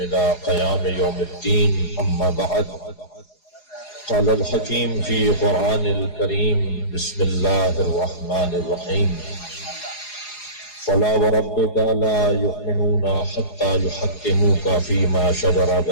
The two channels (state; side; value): late; right; 4.8 ms